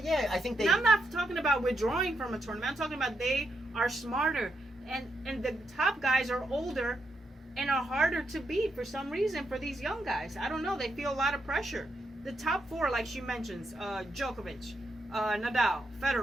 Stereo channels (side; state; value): both; normal; correlation 0.82